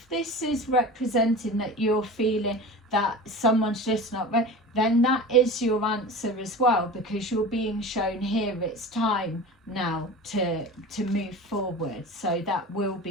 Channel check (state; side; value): normal; both; correlation 0.33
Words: this is representing that you're feeling that someone's just not ready, then that is your answer as well, because you're being shown here it's time now to move forward. So that will